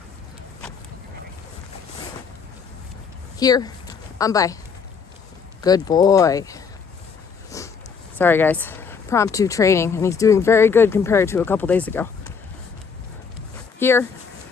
Here. By. Good boy. Sorry, guys. Impromptu training, and he's doing very good compared to a couple days ago. Here.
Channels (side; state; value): right; quieter; 5.9 dB